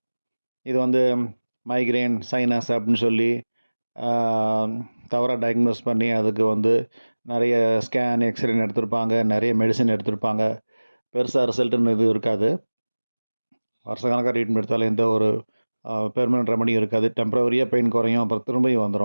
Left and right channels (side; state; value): both; inverted; correlation -1.00